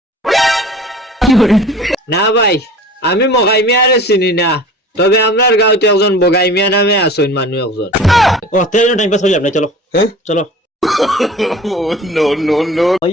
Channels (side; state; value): both; normal; correlation 0.42